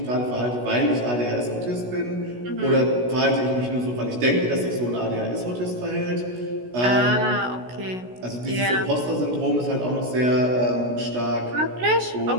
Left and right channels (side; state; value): left; late; 16 ms